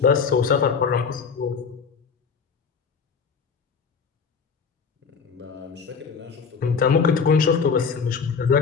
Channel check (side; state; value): right; quieter; 5.7 dB